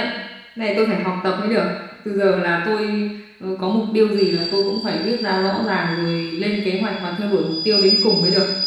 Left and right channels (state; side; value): identical; both; correlation 1.00